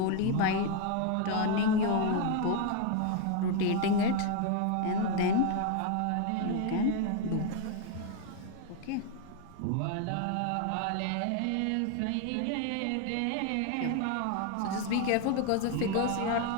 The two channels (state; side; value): different; both; correlation 0.01